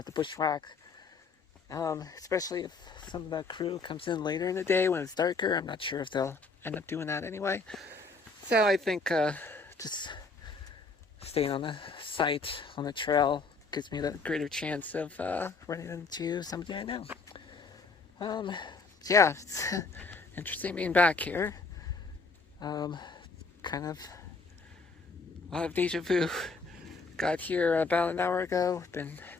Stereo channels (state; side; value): quieter; right; 4.2 dB